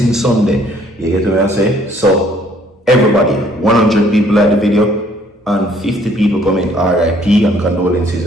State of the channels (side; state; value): both; normal; correlation 0.62